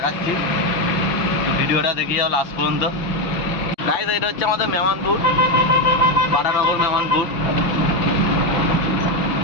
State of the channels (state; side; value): late; right; 5.9 ms